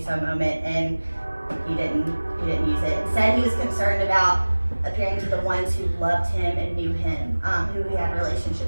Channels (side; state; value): both; inverted; correlation -1.00